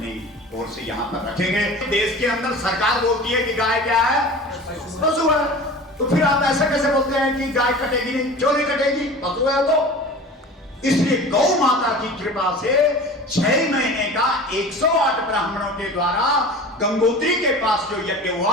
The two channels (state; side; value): normal; both; correlation 0.38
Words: ओर से यहाँ पर रखेंगे। देश के अंदर सरकार बोलती है कि गाय क्या है, पशु है, तो फिर आप ऐसा कैसे बोलते हैं कि गाय कटेगी नहीं? क्यों नहीं कटेगी? पशु है तो। इसलिए गौ माता की कृपा से 6 महीने का 108 ब्राह्मणों के द्वारा गंगोत्री के पास जो यज्ञ